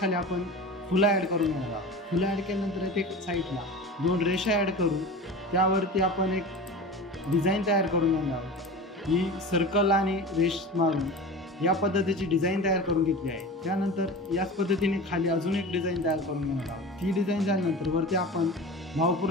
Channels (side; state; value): both; normal; correlation 0.33